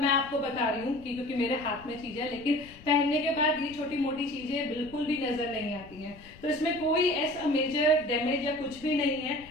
मैं आपको बता रही हूँ कि क्योंकि मेरे हाथ में चीज है, लेकिन पहनने के बाद ये छोटी मोटी चीजें बिल्कुल भी नजर नहीं आती हैं। तो इसमें कोई ऐसा मेजर डैमेज या कुछ भी नहीं है।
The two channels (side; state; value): left; noise; rumble, 21 dB below the sound